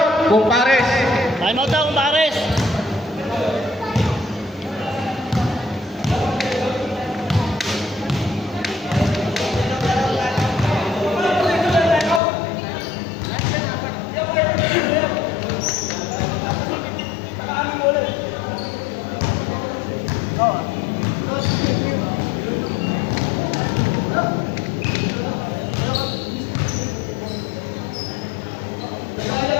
Kumpares! Time out daw, kumpares.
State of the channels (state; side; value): drops out; right; at 12.2 s